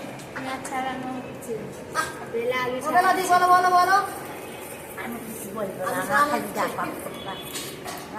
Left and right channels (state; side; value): identical; both; correlation 1.00